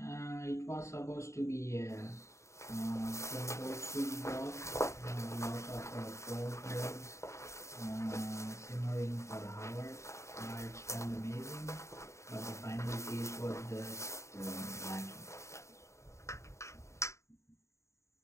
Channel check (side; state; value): right; late; 0.14 ms